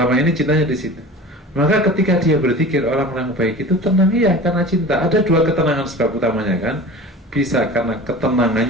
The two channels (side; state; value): both; normal; correlation 0.37